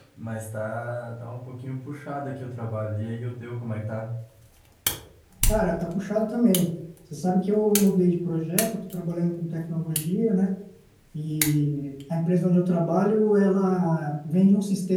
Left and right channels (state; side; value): identical; both; correlation 1.00